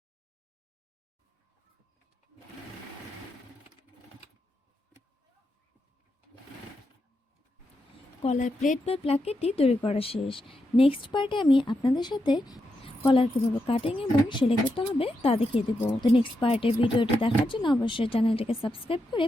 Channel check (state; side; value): normal; both; correlation 0.84